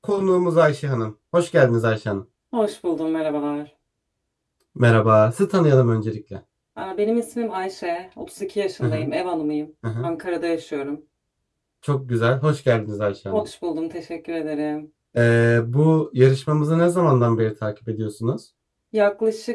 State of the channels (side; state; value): both; identical; correlation 1.00